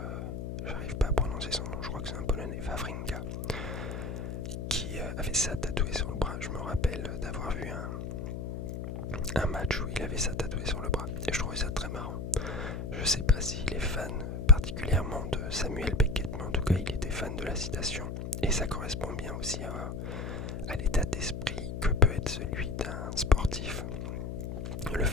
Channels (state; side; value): noise; left; hum, 5 dB below the sound